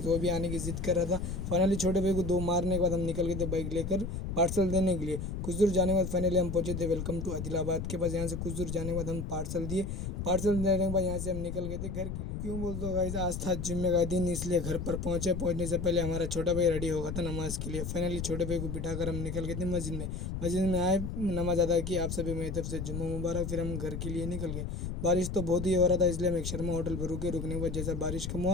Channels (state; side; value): noise; left; rumble, 5 dB below the sound